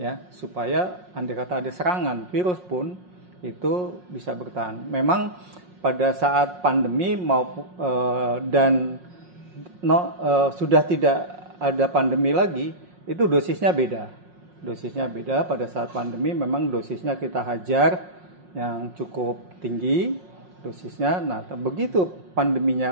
supaya andai kata ada serangan virus pun itu bisa bertahan. Memang pada saat pandemi sudah tidak ada pandemi lagi, itu dosisnya beda. Pada saat pandemi memang dosisnya kita hajar yang cukup tinggi dosisnya. Nah, begitu pandeminya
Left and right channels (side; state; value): left; late; 5.6 ms